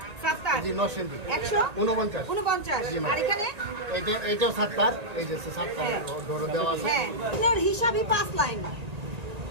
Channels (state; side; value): late; left; 1.9 ms